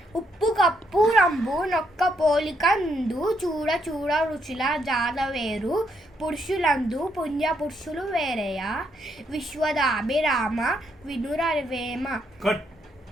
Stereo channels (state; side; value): normal; both; correlation 0.75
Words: ఉప్పు కప్పు రంబు నొక్క పోలిక నుండు చూడ చూడ రుచుల జాడ వేరు పురుషులందు పుణ్య పురుషులు వేరయా విశ్వదాభిరామ వినురవేమ.